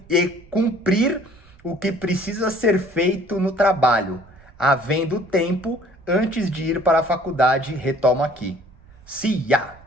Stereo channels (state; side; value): noise; right; rumble, 25 dB below the sound